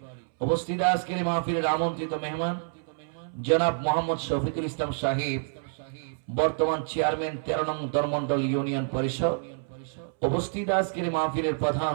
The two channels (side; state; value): left; silent; 59 dB below the other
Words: উপস্থিত আজকের মাহফিলের আমন্ত্রিত মেহমান জনাব মোহাম্মদ শফিকুল ইসলাম সাহেব, বর্তমান চেয়ারম্যান 13 নং ধর্মমণ্ডল ইউনিয়ন পরিষদ, উপস্থিত আজকের মাহফিলের প্রধান